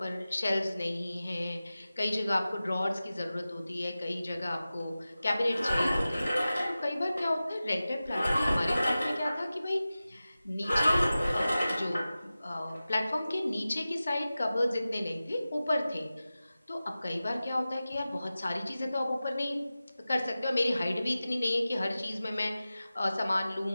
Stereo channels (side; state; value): both; inverted; correlation -0.96